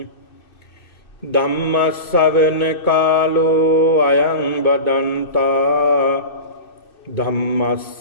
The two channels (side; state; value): right; late; 2.6 ms